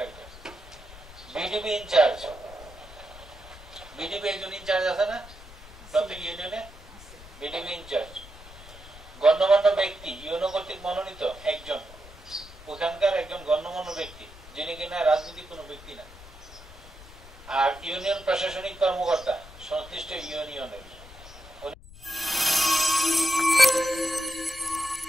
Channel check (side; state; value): left; noise; rumble, 18 dB below the sound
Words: বিডিপি ইনচার্জ, বিডিপি একজন ইনচার্জ আছে না প্রত্যেক ইউনিয়নে, বিডিপি ইনচার্জ। গণ্যমান্য ব্যক্তি ইউনো কর্তৃক মনোনীত একজন, ওখানকার একজন গণ্যমান্য ব্যক্তি যিনি কিনা রাজনৈতিক কোনো ব্যক্তি না। আর ইউনিয়ন প্রশাসনিক কর্মকর্তা সংশ্লিষ্ট ইউনিয়নের,